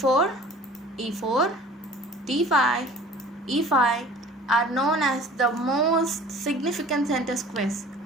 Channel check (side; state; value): both; normal; correlation 0.47